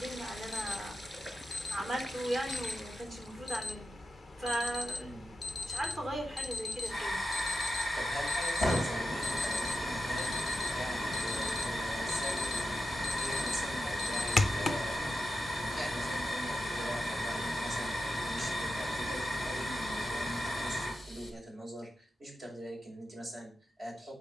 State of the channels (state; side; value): normal; both; correlation 0.88